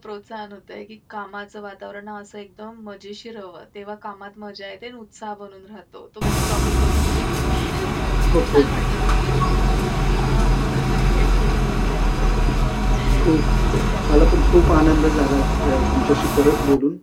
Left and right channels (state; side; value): identical; both; correlation 1.00